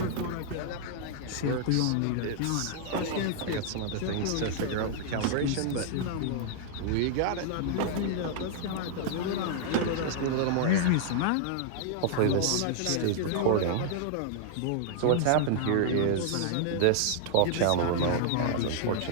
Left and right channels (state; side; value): different; both; correlation -0.01